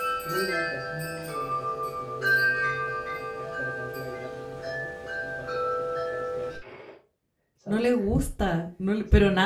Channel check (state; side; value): identical; both; correlation 1.00